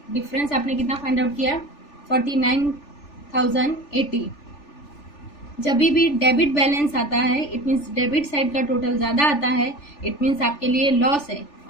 डिफरेंस आपने कितना फाइंड आउट किया, 49,080। जब भी डेबिट बैलेंस आता है इट मीन्स डेबिट साइड का टोटल ज़्यादा आता है, इट मीन्स आपके लिए लॉस है,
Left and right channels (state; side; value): late; right; 3.4 ms